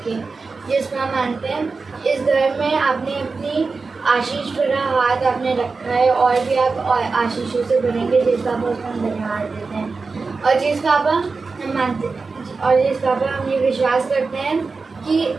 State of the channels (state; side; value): quieter; left; 4.3 dB